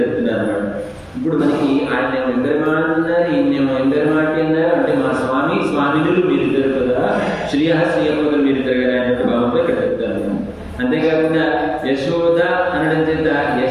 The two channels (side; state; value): both; identical; correlation 1.00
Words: చెప్తున్నారు అన్నమాట. ఇప్పుడు మనకి ఆయన ఎంబెరమాడు అన్నారు, ఈయనేమో ఎంబెరమాటి అన్నారు. అంటే మా స్వామినులు మీరిద్దరు కదా, శ్రీయపదులు మీరిద్దరు కదా అన్నట్టు భావంతో ఇక్కడ చెప్తారు. అంతేకాకుండా యశోద అనడం చేత